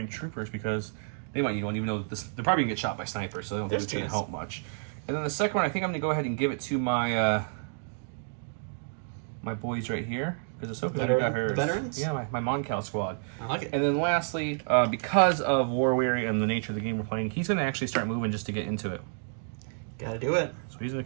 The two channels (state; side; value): silent; left; digital silence